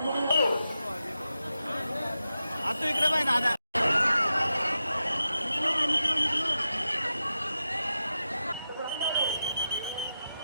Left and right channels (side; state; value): both; inverted; correlation -0.90